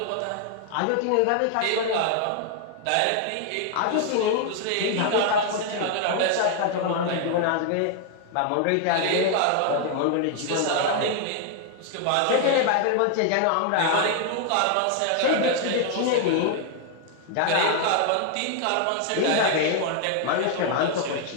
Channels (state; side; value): different; both; correlation 0.00